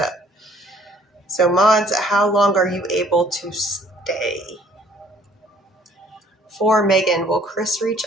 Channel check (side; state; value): both; normal; correlation 0.59